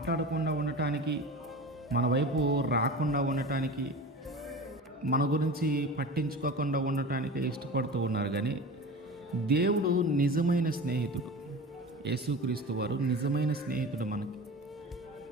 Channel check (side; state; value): both; normal; correlation 0.33